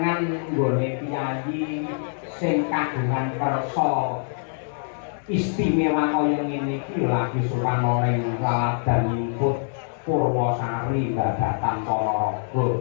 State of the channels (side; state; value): right; silent; 62 dB below the other